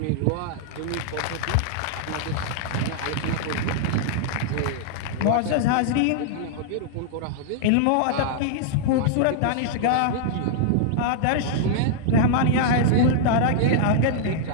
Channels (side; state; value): both; different; correlation -0.01